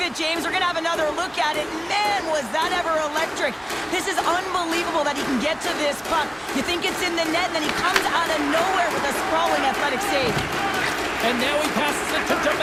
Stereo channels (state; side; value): identical; both; correlation 1.00